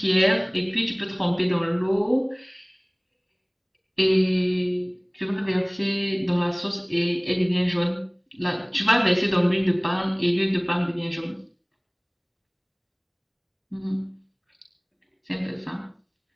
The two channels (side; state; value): both; identical; correlation 1.00